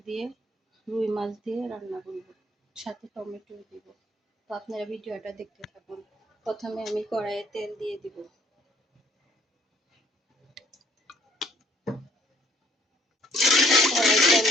দিয়ে রুই মাছ দিয়ে রান্না করব। সাথে টমেটো দিব। তো আপনারা ভিডিওটা দেখতে থাকুন। প্রথমে আমি কড়াইয়ে তেল দিয়ে দিব। কড়াইয়ে তেল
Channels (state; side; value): normal; both; correlation 0.62